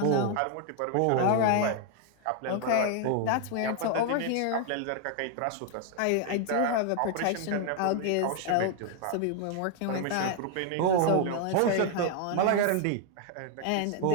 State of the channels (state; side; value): different; both; correlation 0.00